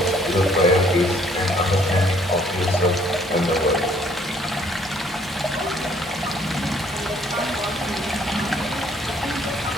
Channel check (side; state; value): both; normal; correlation 0.62